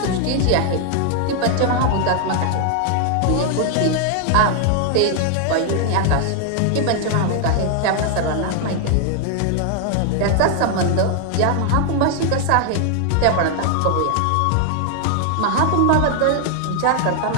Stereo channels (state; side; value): different; both; correlation 0.00